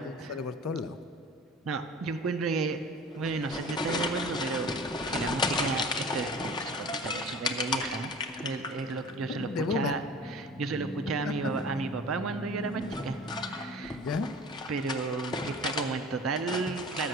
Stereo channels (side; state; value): both; normal; correlation 0.41